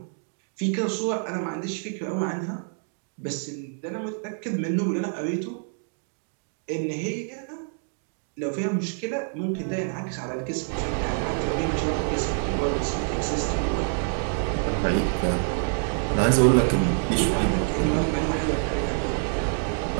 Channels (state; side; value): silent; left; 59 dB below the other